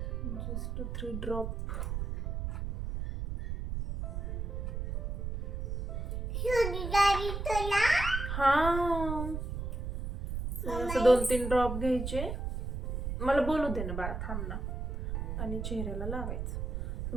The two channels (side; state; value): right; noise; rumble, 3 dB below the sound